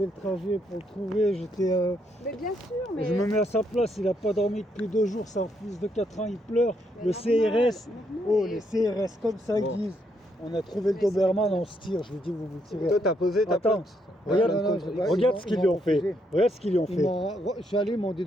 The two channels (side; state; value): both; normal; correlation 0.75